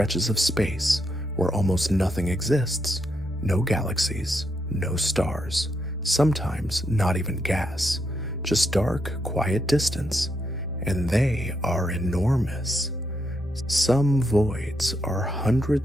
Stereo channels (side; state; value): both; normal; correlation 0.80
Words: of space where almost nothing exists. No galaxies, no stars, sometimes not even gas, just dark, quiet distance, and they are enormous. Some voids are